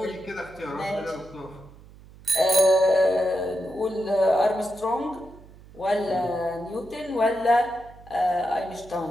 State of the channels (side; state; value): right; noise; hum, 21 dB below the sound